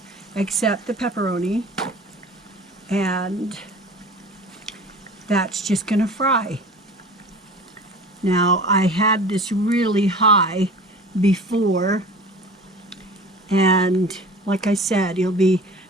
except the pepperoni. And that's just going to fry. Now, I had this really high before, and like I said, it'll be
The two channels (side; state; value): both; normal; correlation 0.40